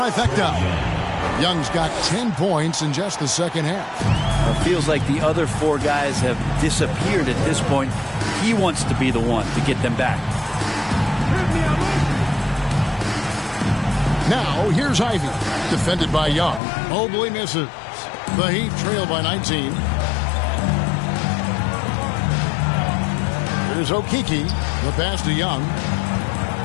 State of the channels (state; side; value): drops out; right; at 16.6 s